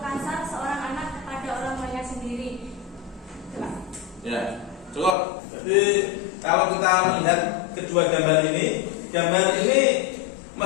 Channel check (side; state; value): right; drops out; at 5.2 s